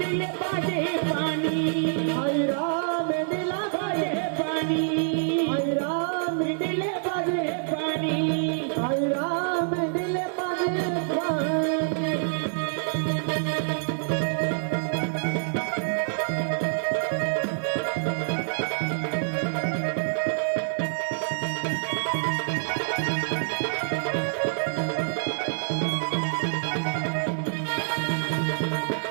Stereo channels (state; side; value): silent; left; digital silence